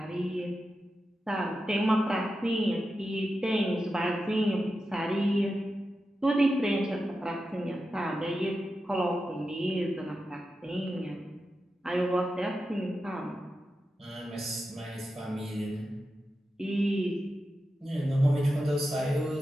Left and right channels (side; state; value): both; normal; correlation 0.90